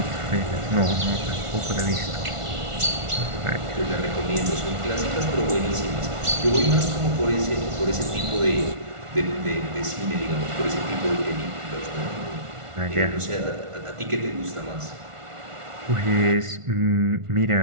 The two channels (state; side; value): late; left; 1.4 ms